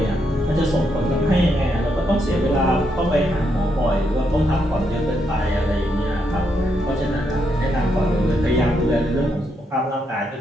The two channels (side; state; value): both; normal; correlation 0.79